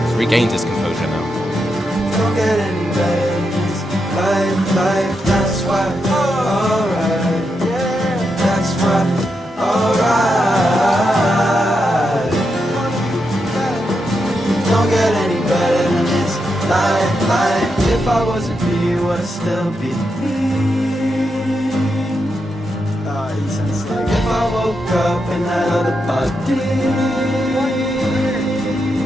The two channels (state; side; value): normal; both; correlation 0.84